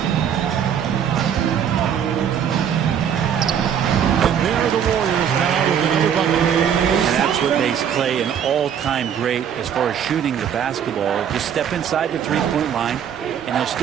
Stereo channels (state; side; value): quieter; left; 8.5 dB